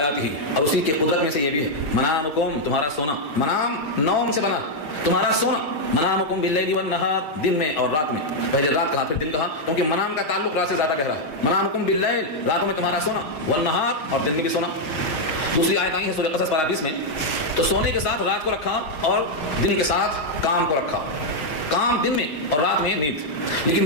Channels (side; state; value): right; late; 6.6 ms